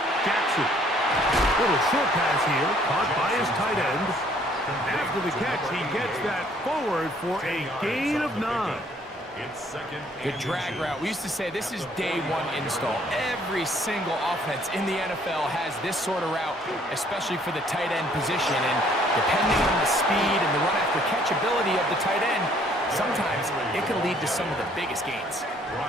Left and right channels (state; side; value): normal; both; correlation 0.62